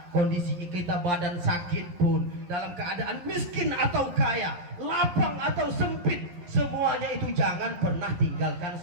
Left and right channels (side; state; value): left; late; 11 ms